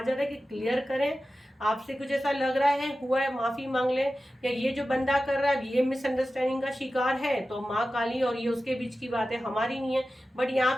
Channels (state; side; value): normal; both; correlation 0.94